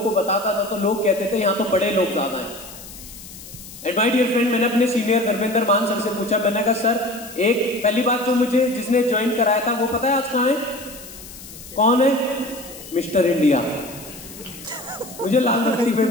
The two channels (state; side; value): noise; left; hiss, 16 dB below the sound